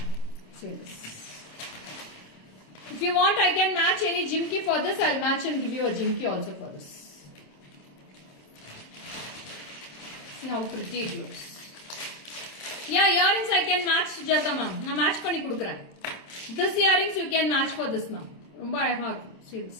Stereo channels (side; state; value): right; late; 27 ms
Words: See this. If you want, I can match any jimki for this. I'll match and give you a jimki also for this. See how pretty it looks. Yeah, earrings I can match Jata ma'am. Na match panni kudukren. This earrings you can match for this ma'am. Romba அழகா இருக்கும். See this.